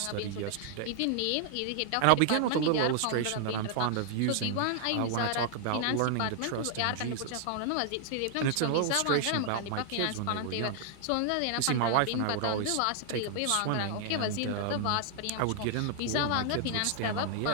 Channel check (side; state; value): both; different; correlation 0.00